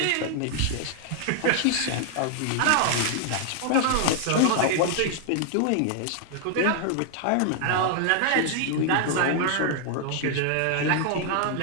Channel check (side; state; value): both; different; correlation 0.00